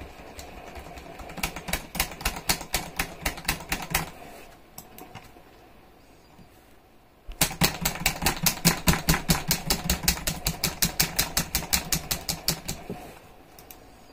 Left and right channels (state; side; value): identical; both; correlation 1.00